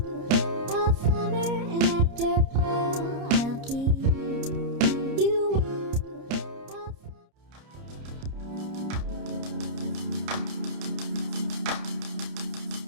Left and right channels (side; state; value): left; late; 30 ms